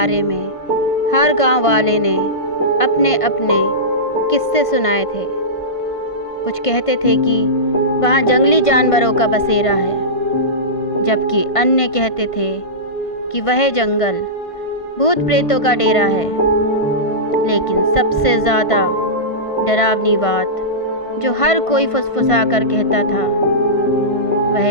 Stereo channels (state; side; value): late; right; 1.5 ms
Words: में हर गांव वाले ने अपने अपने किस्से सुनाए थे। कुछ कहते थे कि वहाँ जंगली जानवरों का बसेरा है, जबकि अन्य कहते थे कि वह जंगल भूत प्रेतों का डेरा है। लेकिन सबसे ज़्यादा डरावनी बात जो हर कोई फुसफुसा कर कहता था